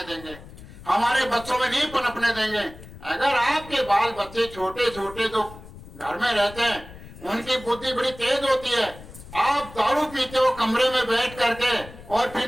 देंगे, हमारे बच्चों में नहीं पनपने देंगे। अगर आपके बाल बच्चे छोटे छोटे जो घर में रहते हैं उनकी बुद्धि बड़ी तेज होती है, आप दारू पीते हो कमरे में बैठ करके और फिर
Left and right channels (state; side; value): noise; left; rumble, 17 dB below the sound